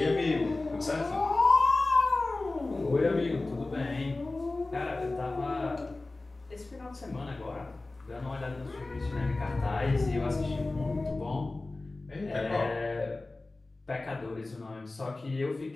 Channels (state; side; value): quieter; right; 3.1 dB